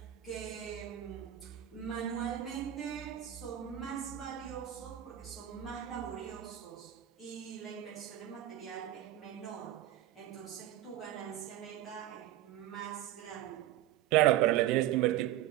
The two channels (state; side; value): quieter; left; 13.0 dB